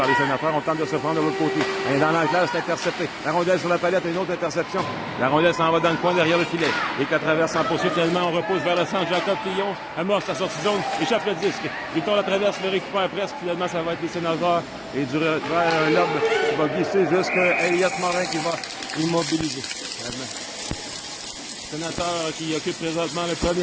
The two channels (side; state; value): both; identical; correlation 1.00